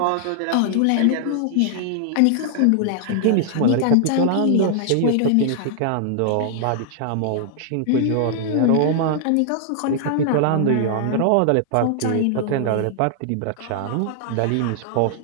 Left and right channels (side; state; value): both; different; correlation -0.01